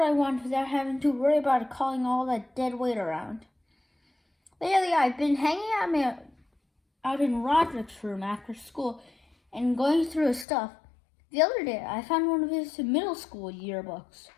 I want without having to worry about calling all that dead weight around. Lately, I've been hanging out in Roderick's room after school and going through his stuff. The other day, I found one of his middle school yearbooks.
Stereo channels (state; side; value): drops out; right; at 10.5 s